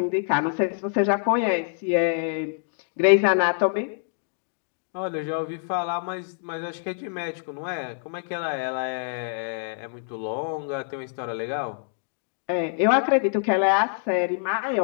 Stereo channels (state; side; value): silent; right; digital silence